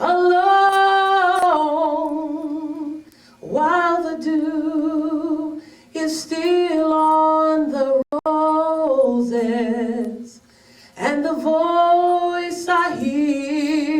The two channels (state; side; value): identical; both; correlation 1.00